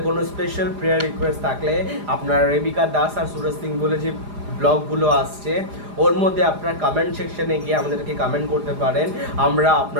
কোনো স্পেশাল প্রেয়ার রিকোয়েস্ট থাকলে আপনারা রেবিকা দাস আর সুরজ সিং বলে যে ব্লগগুলো আসছে, ওর মধ্যে আপনার কমেন্ট সেকশনে গিয়ে আমাদেরকে কমেন্ট করতে পারেন। আমরা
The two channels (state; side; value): late; left; 4.9 ms